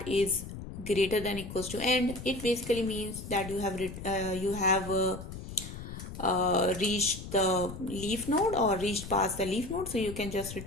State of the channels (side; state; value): left; noise; rumble, 10 dB below the sound